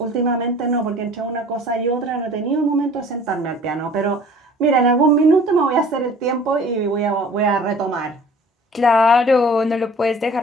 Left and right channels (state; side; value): normal; both; correlation 0.48